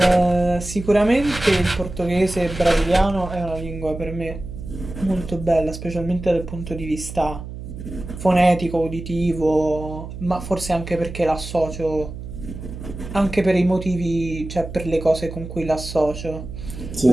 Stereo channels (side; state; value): right; noise; hum, 10 dB below the sound